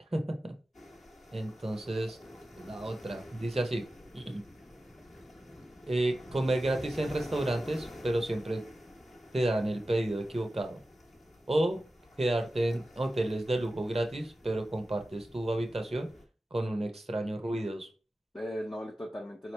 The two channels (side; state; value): both; normal; correlation 0.94